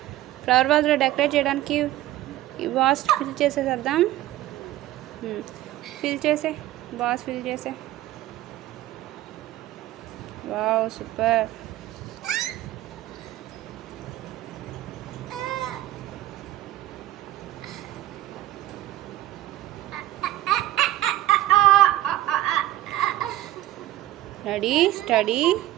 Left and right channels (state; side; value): quieter; left; 14.8 dB